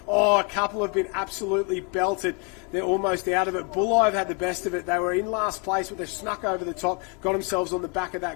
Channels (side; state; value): right; quieter; 32.6 dB